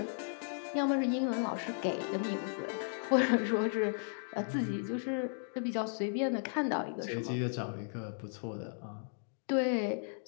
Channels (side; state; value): right; silent; digital silence